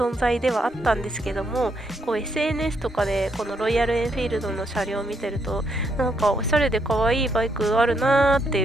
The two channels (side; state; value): both; normal; correlation 0.76